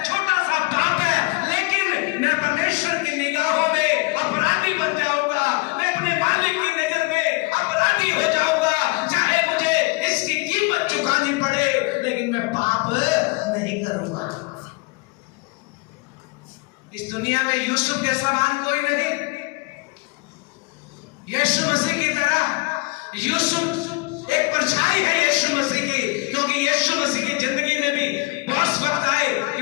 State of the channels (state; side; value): quieter; right; 25.9 dB